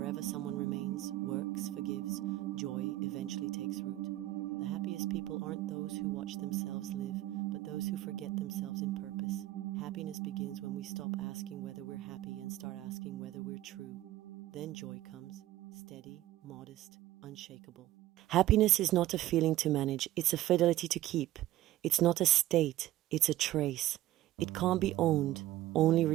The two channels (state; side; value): quieter; left; 15.0 dB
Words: someone remains, works, forgives, joy eventually takes root. The happiest people aren't those who watch themselves live, but those who forget themselves in purpose. Happiness begins when we stop asking whether we're happy and start asking whether we're true. Then joy comes, steady, modest, unshakable. Happiness is not a feeling to manage, it's a fidelity to keep. It's not a state, it's a trace. It can't be owned, only